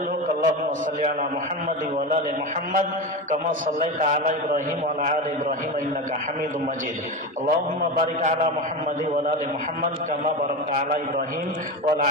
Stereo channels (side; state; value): both; normal; correlation 0.21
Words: হোক। আল্লাহুম্মা সাল্লি আলা মুহাম্মাদ ওয়া আলা আলি মুহাম্মাদ কামা সাল্লাইতা আলা ইব্রাহিম ওয়া আলা আলি ইব্রাহিম ইন্নাকা হামিদুম মাজিদ। আল্লাহুম্মা বারিক আলা মুহাম্মাদ ওয়া আলা আলি মুহাম্মাদ কামা বারাকতা আলা ইব্রাহিম ওয়া আলা